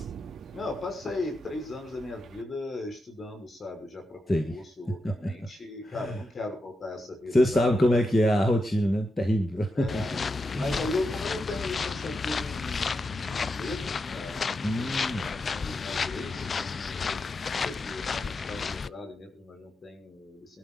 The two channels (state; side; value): normal; both; correlation 0.87